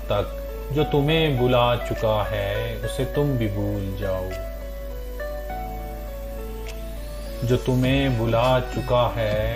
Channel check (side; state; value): both; identical; correlation 1.00